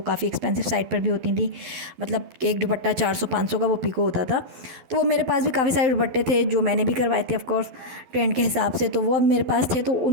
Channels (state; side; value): late; left; 12 ms